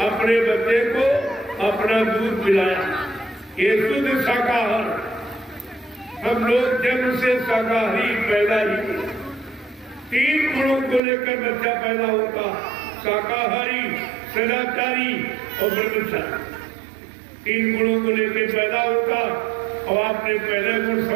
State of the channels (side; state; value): left; drops out; at 11.0 s